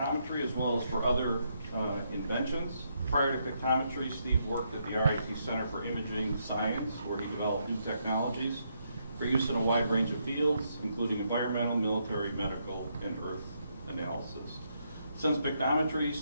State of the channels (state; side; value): inverted; both; correlation -0.78